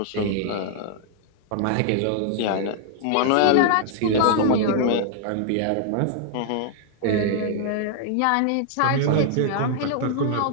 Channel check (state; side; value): different; both; correlation 0.00